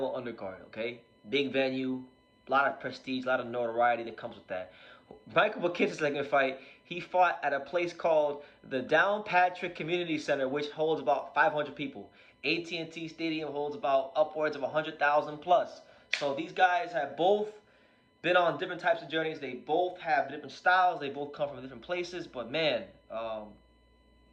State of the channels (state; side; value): identical; both; correlation 1.00